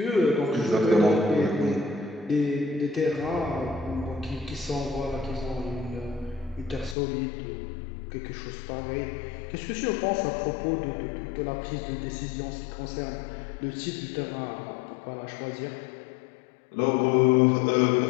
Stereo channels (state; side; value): drops out; right; at 7.0 s